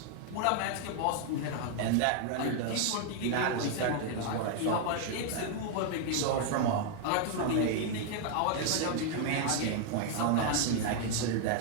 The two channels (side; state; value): both; different; correlation 0.00